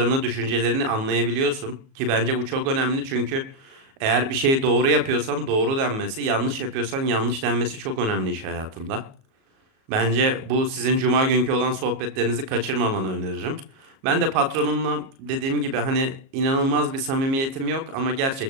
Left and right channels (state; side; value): late; left; 37 ms